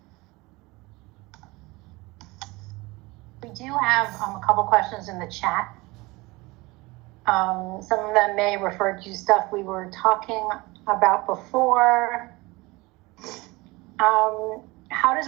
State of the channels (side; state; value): left; quieter; 22.8 dB